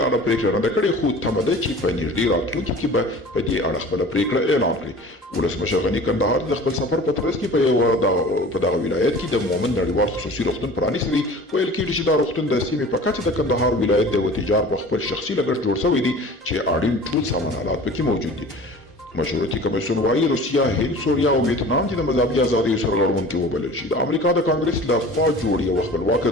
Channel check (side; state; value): both; normal; correlation 0.42